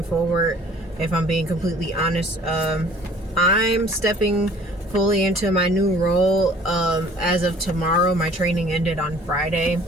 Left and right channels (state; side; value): normal; both; correlation 0.52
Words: forward. If I'm being completely honest, I'm stepping fully into my new role as of tomorrow. My training ended on Friday,